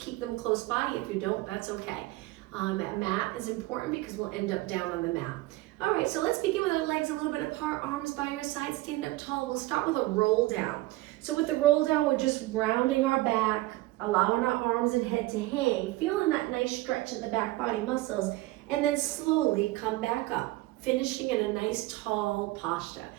them close by. If you don't, that's okay. That mat is important because we'll end up down on the mat. All right, so let's begin with our legs a little bit apart, arms by your side, stand up tall. We'll start with a roll down. So with the roll down, we're just rounding our back, allowing our arms and head to hang, feeling that nice stretch in the back body muscles, and then slowly come back up, finishing in a nice tall posture.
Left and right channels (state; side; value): quieter; left; 18.9 dB